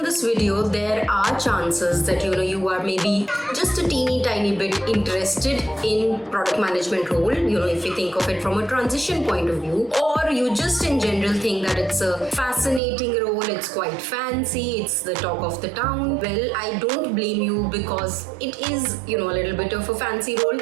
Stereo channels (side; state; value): left; drops out; at 12.8 s